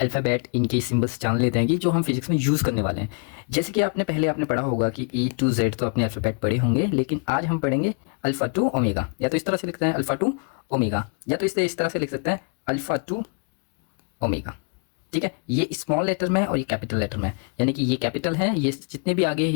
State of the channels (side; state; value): right; quieter; 38.7 dB